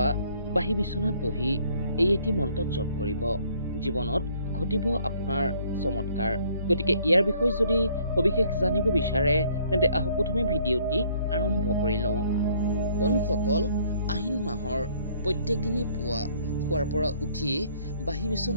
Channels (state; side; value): inverted; both; correlation -0.61